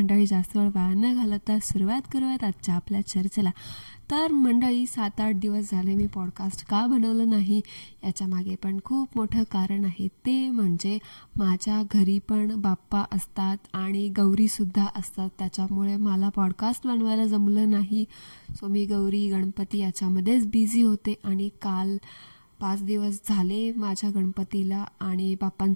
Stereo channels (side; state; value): both; inverted; correlation -1.00